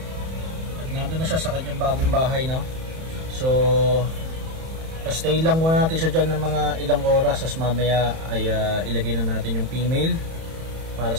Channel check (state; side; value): late; left; 31 ms